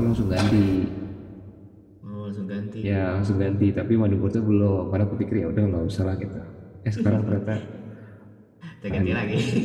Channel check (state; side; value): identical; both; correlation 1.00